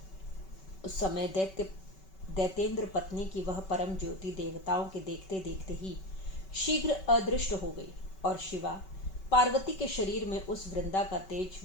उस समय दैतेंद्र पत्नी की वह परम ज्योति देवताओं के देखते देखते ही शीघ्र अदृष्ट हो गई और शिवा पार्वती के शरीर में उस वृंदा का तेज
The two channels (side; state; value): right; late; 5.3 ms